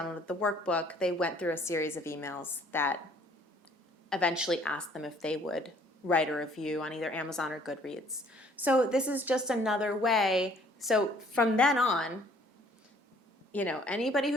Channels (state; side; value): normal; both; correlation 0.59